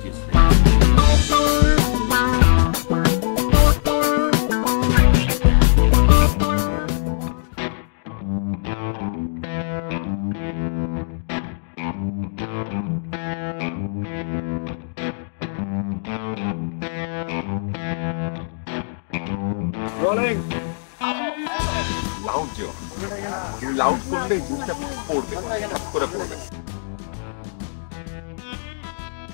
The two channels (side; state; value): right; silent; digital silence